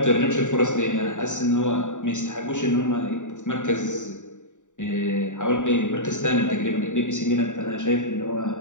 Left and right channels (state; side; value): late; right; 0.86 ms